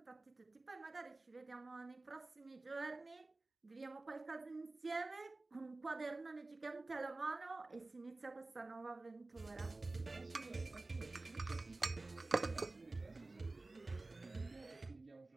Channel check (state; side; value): quieter; left; 3.2 dB